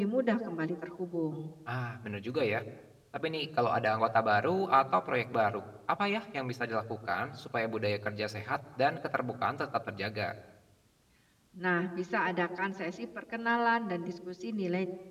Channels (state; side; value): identical; both; correlation 1.00